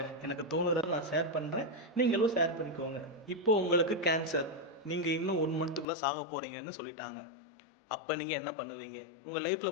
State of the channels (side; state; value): right; drops out; at 5.9 s